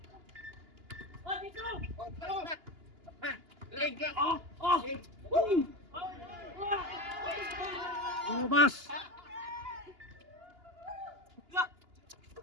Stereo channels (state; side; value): late; left; 2.9 ms